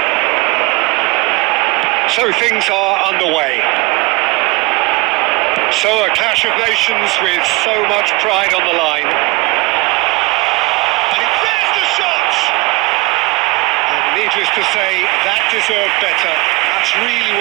So things are underway. So a clash of nations with so much pride on the line. And there's the shot! And needless to say, that deserved better. That's really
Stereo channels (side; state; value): left; quieter; 24.4 dB